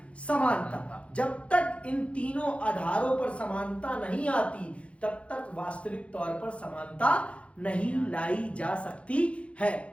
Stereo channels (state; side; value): late; right; 0.062 ms